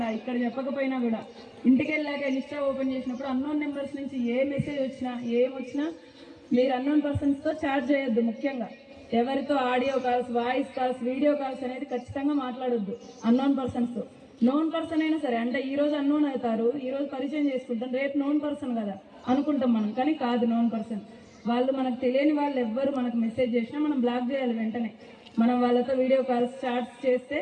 ఇక్కడ చెప్పకపోయినా కూడా ఇంటికి వెళ్ళాక ఇన్స్టా ఓపెన్ చేసినప్పుడు అన్నోన్ నెంబర్స్ నుంచి ఏ మెసేజ్ వచ్చినా ఏమొచ్చినా మీరు అన్నోన్ పర్సన్స్తో చాట్ చేయొద్దు. ముఖ్యంగా ఎవరితో audio calls, voice calls, video calls అనేది ఖచ్చితంగా మాట్లాడొద్దు అన్నోన్ పర్సన్స్తో. నోన్ పర్సన్ అయినా సరే, అంటే ఈ రోజు అన్నోన్ అవుతారు, ఈ రోజు పరిచయం చేసుకుంటాం, రేపు నోన్ పర్సన్ కదా అనుకుంటాం మనం, కానీ కాదు నోన్ పర్సన్. వాళ్ళు మనకు తెలియని వాళ్ళు ఎవ్వరు మనకు మెసేజ్ చేసినా మనం బ్లాక్ చేయాలి వెంటనే. మనం వాళ్ళతో వీడియో కాల్స్, చాట్స్ చేస్తే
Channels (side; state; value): both; identical; correlation 1.00